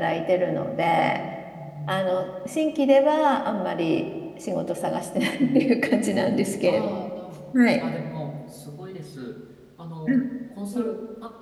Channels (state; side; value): identical; both; correlation 1.00